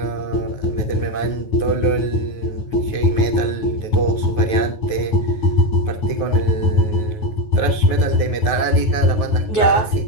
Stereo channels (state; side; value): late; right; 9.4 ms